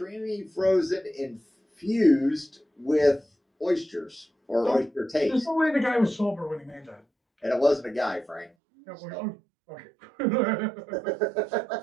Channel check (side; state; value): left; drops out; at 8.5 s